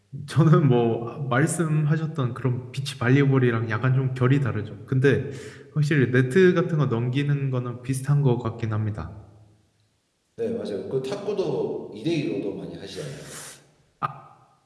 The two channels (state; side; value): identical; both; correlation 1.00